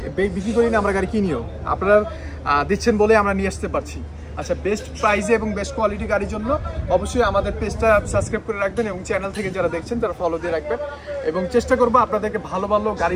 বিক্রি করি না, আমরা গাড়ি কিনিও। আপনারা দিচ্ছেন বলে আমরা নিয়ে আসতে পারছি। আচ্ছা, বেস্ট প্রাইসে এবং বেস্ট কোয়ালিটি গাড়ির জন্য অবশ্যই আমাদের পেজটা সাবস্ক্রাইব করে রাখবেন এবং চ্যানেল থেকে যারা দেখছেন তারা ফলো দিয়ে রাখবেন এবং চেষ্টা করবো আপনাদেরকে ভালো ভালো গাড়ি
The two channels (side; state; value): both; identical; correlation 1.00